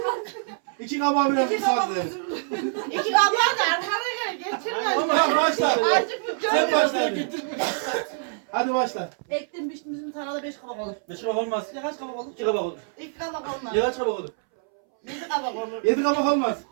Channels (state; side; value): silent; left; 62 dB below the other